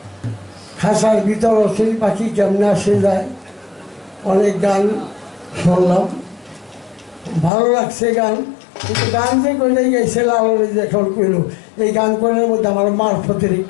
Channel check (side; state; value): right; drops out; at 7.5 s